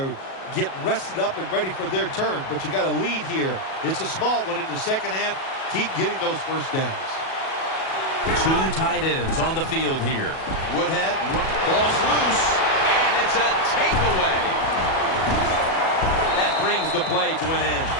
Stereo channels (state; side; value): late; right; 37 ms